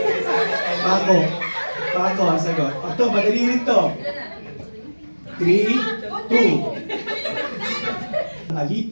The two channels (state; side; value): inverted; both; correlation -1.00